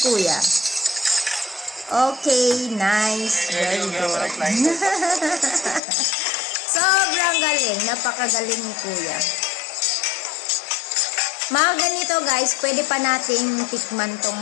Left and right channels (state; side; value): drops out; right; at 5.8 s